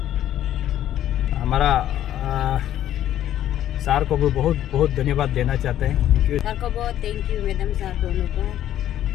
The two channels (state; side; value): quieter; right; 11.9 dB